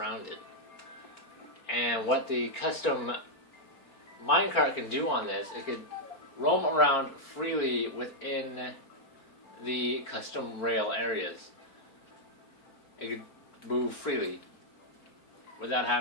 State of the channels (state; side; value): late; right; 4.4 ms